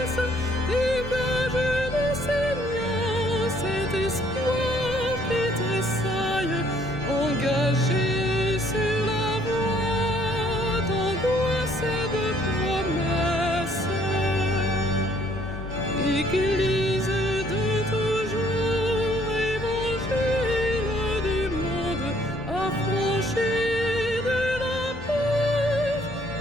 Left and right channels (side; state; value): both; normal; correlation 0.63